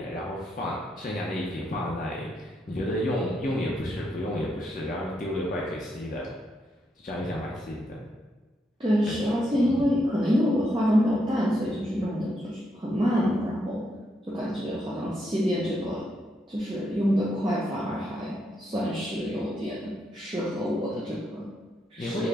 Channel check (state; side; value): normal; both; correlation 0.79